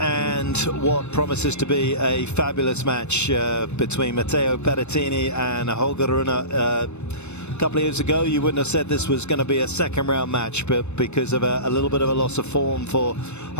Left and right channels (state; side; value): late; right; 0.81 ms